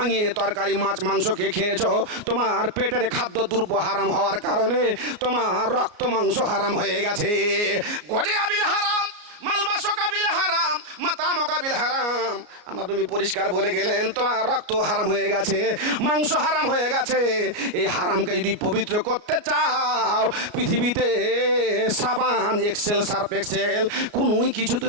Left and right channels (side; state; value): left; late; 34 ms